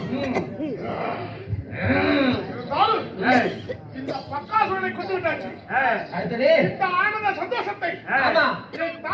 இந்த பக்காசுரனை கொண்டு விட்டாச்சு அடுத்தது இந்த ஆனந்த சந்தோஷத்தை ஆமா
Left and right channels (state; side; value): identical; both; correlation 1.00